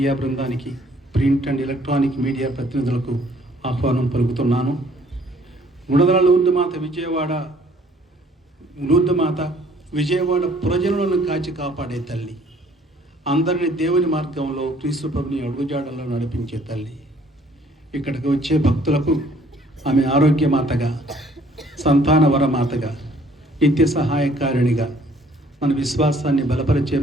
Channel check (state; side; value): normal; both; correlation 0.60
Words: బృందానికి, ప్రింట్ అండ్ ఎలక్ట్రానిక్ మీడియా ప్రతినిధులకు ఆహ్వానం పలుకుతున్నాను. గుణదల లూర్దుమాత విజయవాడ పురజనులను కాచి కాపాడే తల్లి, అందరినీ దేవుని మార్గంలో క్రీస్తు ప్రభుని అడుగుజాడల్లో నడిపించే తల్లి. ఇక్కడికి వచ్చే భక్తులకు ఆమె ఆరోగ్యమాతగా, సంతాన వరమాతగా, నిత్య సహాయకారిణిగా, మన విశ్వాసాన్ని బలపరిచే